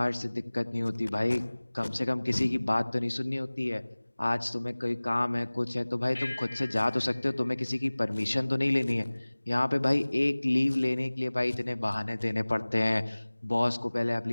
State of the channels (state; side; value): inverted; both; correlation -1.00